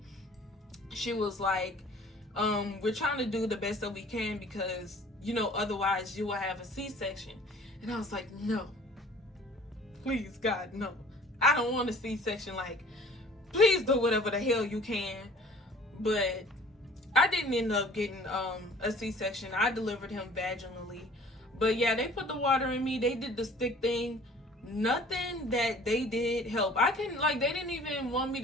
she was like, we're trying to do the best that we can, because, you know, otherwise you will have a C-section. And I was like, no, please, God, no, I don't want a C-section. Like, please do whatever the hell you can. But I didn't end up getting a C-section. I delivered him vaginally. But yeah, they put the water in me. They did the stick thing. Nothing that they did help. They didn't even want me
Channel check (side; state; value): both; normal; correlation 0.50